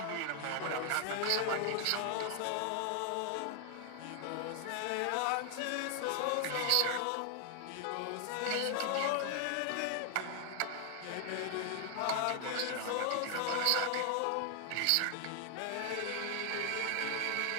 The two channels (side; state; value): both; different; correlation 0.00